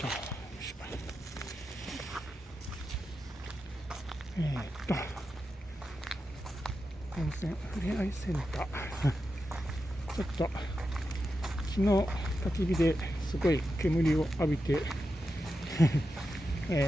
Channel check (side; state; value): both; normal; correlation 0.89